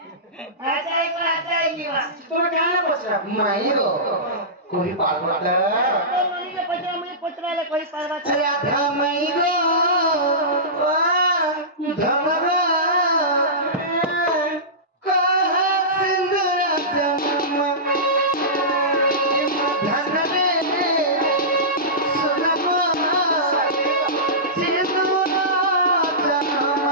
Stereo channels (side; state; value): both; normal; correlation -0.19